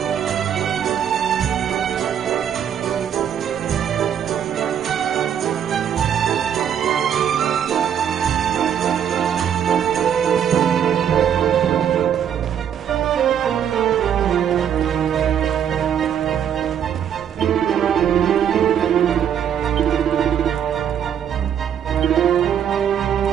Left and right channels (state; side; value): quieter; left; 8.9 dB